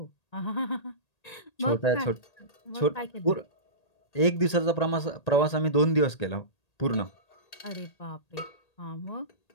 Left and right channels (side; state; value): right; late; 1.8 ms